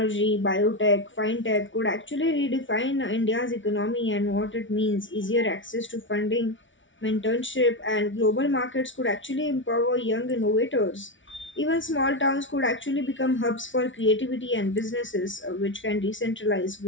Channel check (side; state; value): right; late; 0.56 ms